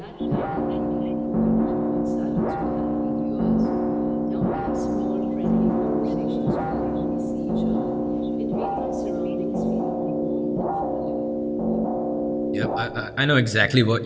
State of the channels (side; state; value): both; identical; correlation 1.00